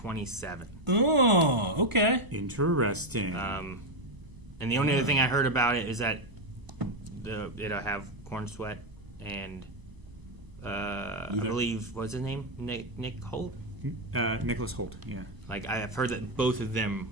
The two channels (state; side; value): late; left; 1.0 ms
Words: Oh, okay. Interesting. And the only other thing I heard about it is that it'll have Corn Sweat and I believe, what's his name? Nick Holt? Nicholas Holt. Yeah. Like, I've heard that both of them